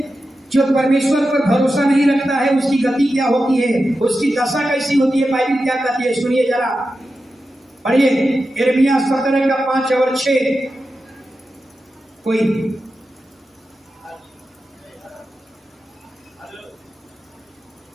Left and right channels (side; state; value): both; normal; correlation 0.91